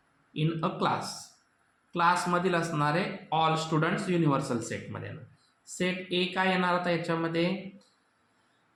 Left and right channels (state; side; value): identical; both; correlation 1.00